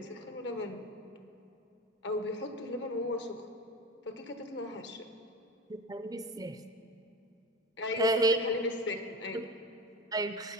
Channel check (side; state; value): both; normal; correlation 0.29